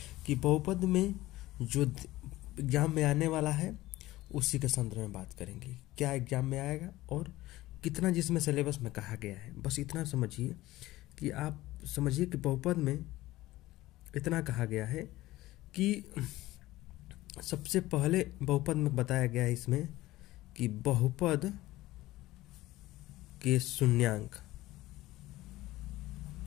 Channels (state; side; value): quieter; right; 17.3 dB